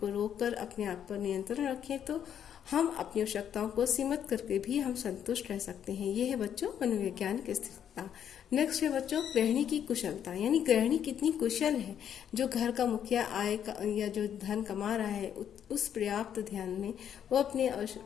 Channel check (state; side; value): quieter; right; 9.2 dB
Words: रोककर अपने आप पर नियंत्रण रखें तो हम अपनी आवश्यकताओं को सीमित करके भी हम संतुष्ट रह सकते हैं। ये है बच्चों मनोवैज्ञानिक स्थिरता। नेक्स्ट है बच्चों गृहिणी की कुशलता, यानी गृहिणी कितनी कुशल है। जो घर का मुखिया आय का या जो धन कमा रहा है उस पर्याप्त ध्यान में वो अपने